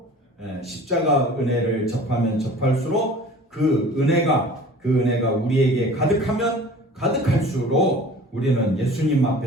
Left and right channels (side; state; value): both; normal; correlation 0.44